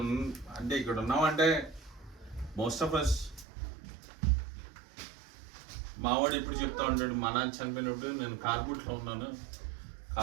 ఉన్నామంటే మోస్ట్ ఆఫ్ అస్, మావాడు ఇప్పుడు చెప్తా ఉంటాడు, మా నాన్న చనిపోయినప్పుడు నేను కార్బూట్లో ఉన్నాను,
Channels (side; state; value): left; drops out; at 3.5 s